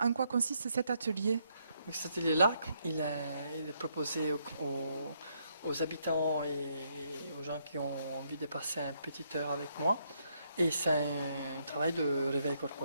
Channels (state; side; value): inverted; both; correlation -0.75